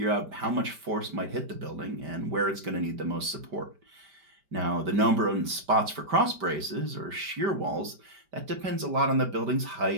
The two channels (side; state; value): left; late; 5.1 ms